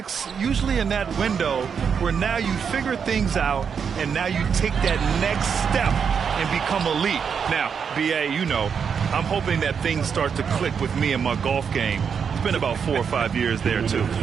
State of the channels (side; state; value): left; quieter; 6.7 dB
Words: usually in that window where now you figure things out and now you take that next step and become elite. Now, B.A., you know, I'm hoping that things start to click with me in my golf game. It's been about 4 or 5 years there, too.